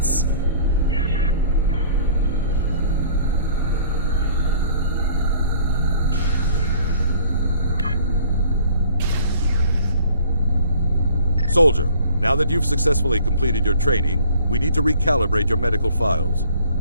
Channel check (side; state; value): both; inverted; correlation -0.53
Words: Soldier, now that you've successfully completed your training, we need to recalibrate your medical files.